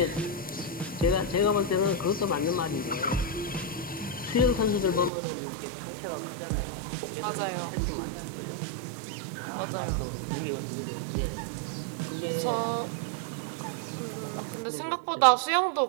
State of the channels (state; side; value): drops out; left; at 5.1 s